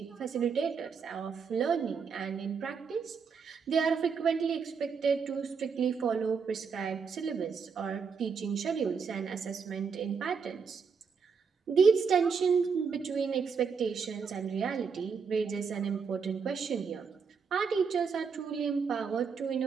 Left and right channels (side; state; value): left; quieter; 5.8 dB